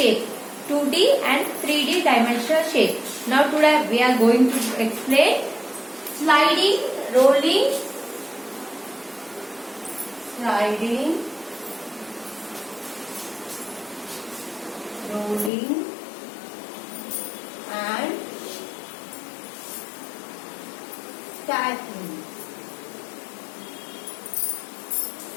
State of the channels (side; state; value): right; drops out; at 15.5 s